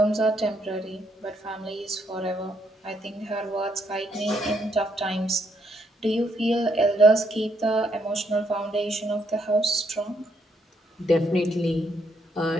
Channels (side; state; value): both; normal; correlation 0.74